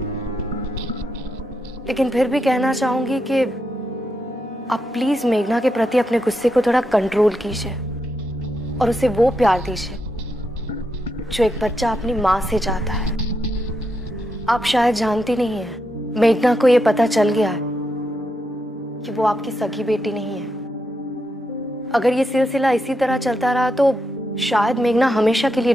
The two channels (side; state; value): both; normal; correlation 0.83